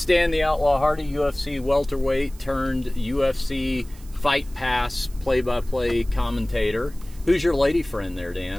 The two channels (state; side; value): noise; right; hiss, 24 dB below the sound